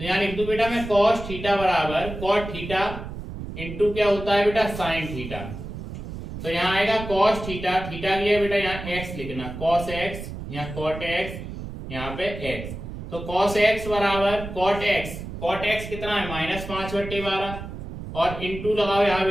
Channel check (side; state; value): right; noise; rumble, 9 dB below the sound